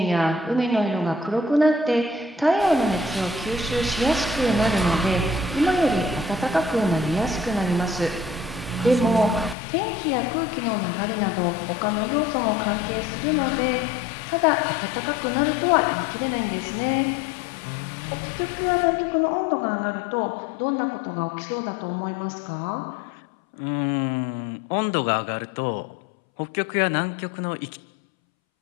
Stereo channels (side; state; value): right; drops out; at 9.6 s